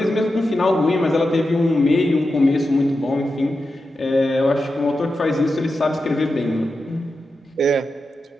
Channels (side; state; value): both; normal; correlation 0.90